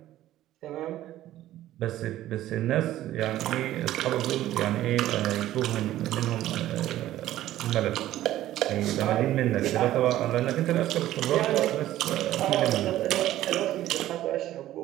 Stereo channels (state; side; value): quieter; left; 14.0 dB